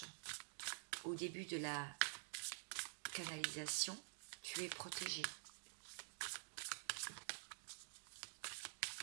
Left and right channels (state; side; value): silent; left; digital silence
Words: au début de la canalisation, tu es protégé.